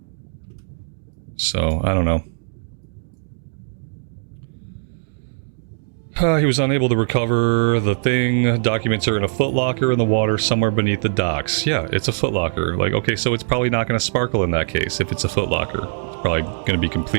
So, I don't know. He was unable to recover the thing. Documents are in a footlocker in the water somewhere beneath the docks. Yeah, it's a footlocker. Like, okay, so it's probably not going to sparkle in that case if it's a footlocker. It's probably going to be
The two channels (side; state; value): left; silent; digital silence